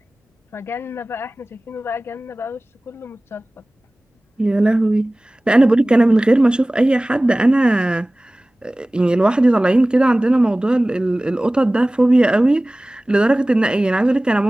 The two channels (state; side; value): normal; both; correlation 0.98